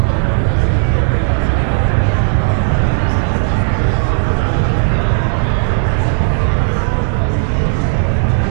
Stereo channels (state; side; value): silent; left; 63 dB below the other